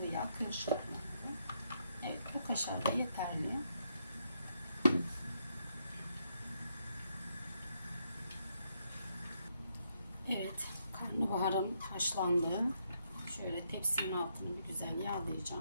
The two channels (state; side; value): inverted; both; correlation -0.77